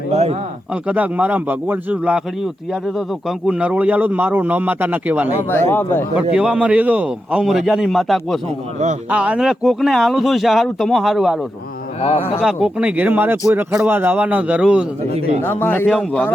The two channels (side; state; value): both; normal; correlation 0.88